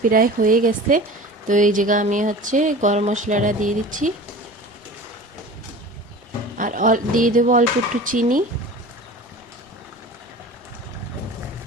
প্রায় হয়ে গেছে। তো এই জায়গা আমি হচ্ছে গরম মশলাটা দিয়ে দিচ্ছি, আর দিয়ে দেবো অল্প একটু চিনি।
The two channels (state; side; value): normal; both; correlation 0.38